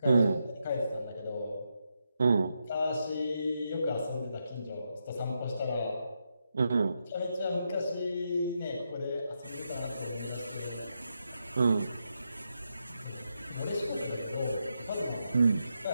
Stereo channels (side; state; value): both; inverted; correlation -0.84